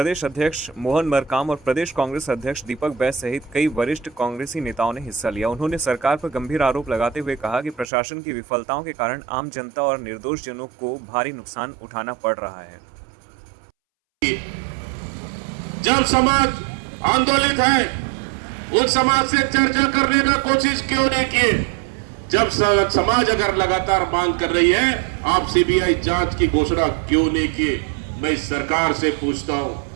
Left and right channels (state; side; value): drops out; left; at 7.9 s